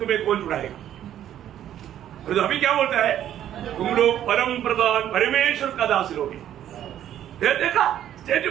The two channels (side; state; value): left; quieter; 11.1 dB